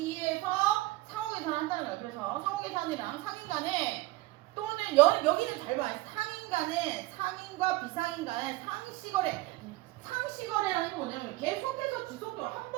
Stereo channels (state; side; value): quieter; left; 19.8 dB